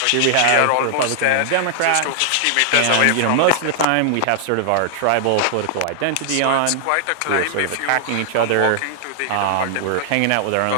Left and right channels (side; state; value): both; different; correlation 0.00